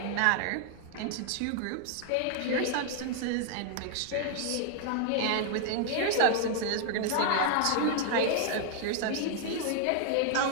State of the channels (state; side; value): different; both; correlation 0.00